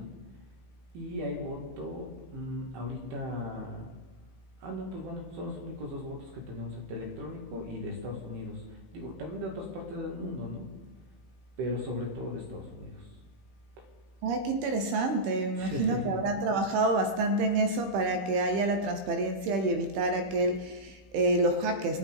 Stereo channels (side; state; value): left; late; 15 ms